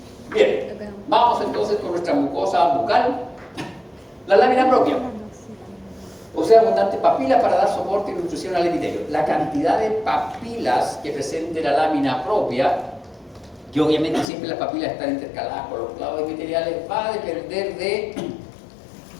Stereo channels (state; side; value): drops out; right; at 14.2 s